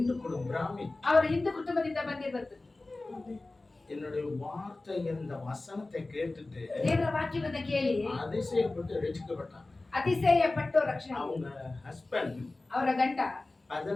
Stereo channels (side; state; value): right; quieter; 3.1 dB